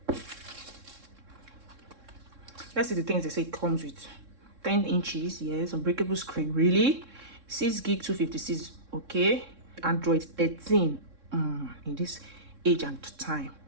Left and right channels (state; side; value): late; left; 3.6 ms